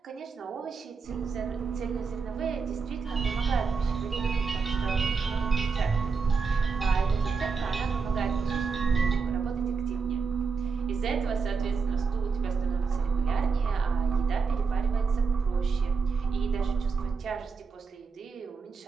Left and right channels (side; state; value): left; quieter; 5.1 dB